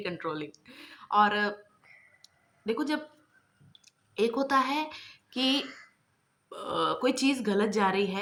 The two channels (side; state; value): both; identical; correlation 1.00